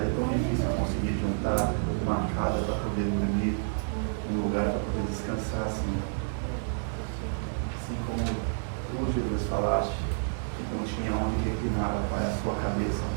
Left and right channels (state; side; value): silent; left; 58 dB below the other